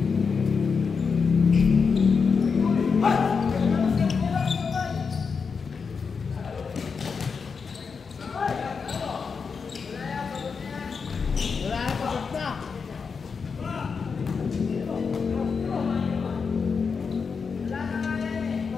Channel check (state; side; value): quieter; right; 5.5 dB